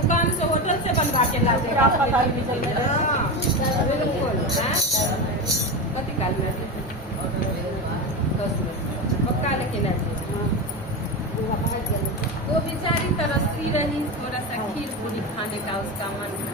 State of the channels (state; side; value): normal; both; correlation 0.19